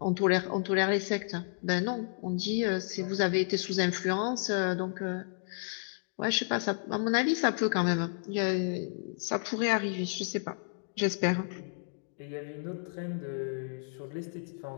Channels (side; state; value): right; silent; digital silence